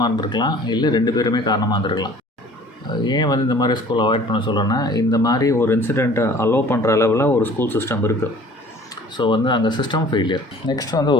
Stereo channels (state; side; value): normal; both; correlation 0.49